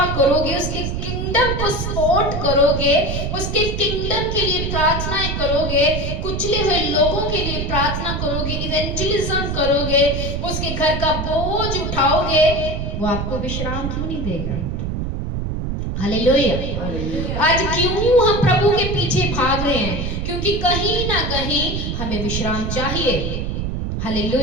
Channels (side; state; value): right; noise; rumble, 3 dB below the sound